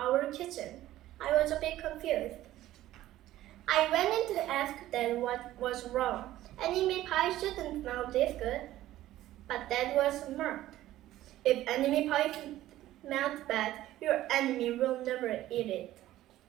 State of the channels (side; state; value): left; quieter; 14.6 dB